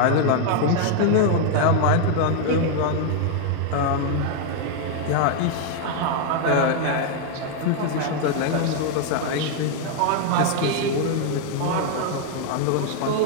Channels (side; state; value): both; different; correlation 0.00